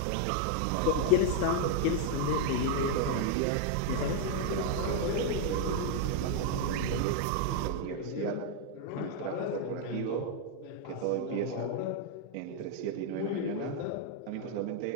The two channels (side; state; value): both; different; correlation 0.00